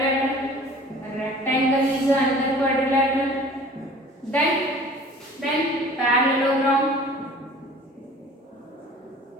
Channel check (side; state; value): both; normal; correlation 0.47